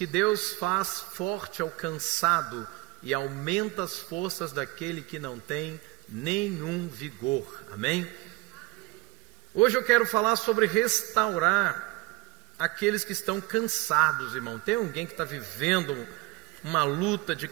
Deus faz forte ao cansado e aumenta as forças daquele que não tem nenhum vigor. Amém? Hoje eu quero falar sobre restaurar aqueles que estão cansados, irmão. Tem alguém que está vivendo uma luta de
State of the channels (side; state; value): left; quieter; 21.5 dB